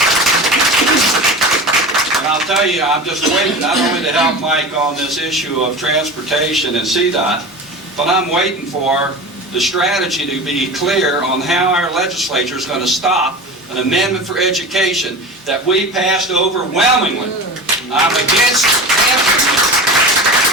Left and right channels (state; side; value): normal; both; correlation 0.31